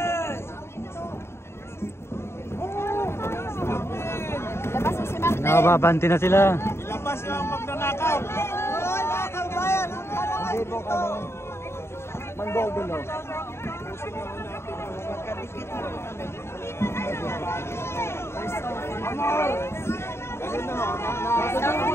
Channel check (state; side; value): late; right; 0.12 ms